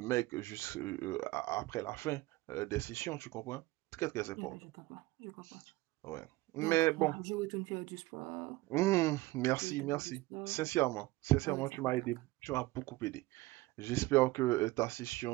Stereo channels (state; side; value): quieter; left; 19.6 dB